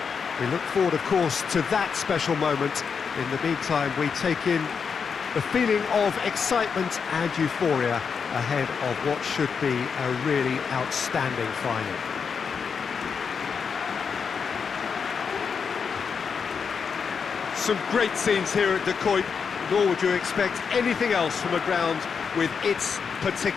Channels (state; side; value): quieter; right; 6.1 dB